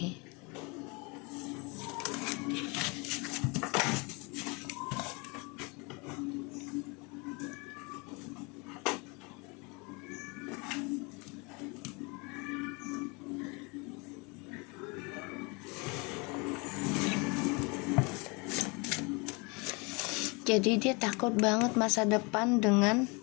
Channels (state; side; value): quieter; right; 29.1 dB